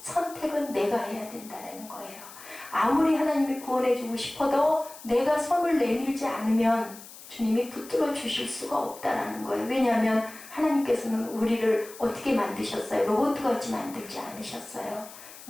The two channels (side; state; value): left; noise; hiss, 17 dB below the sound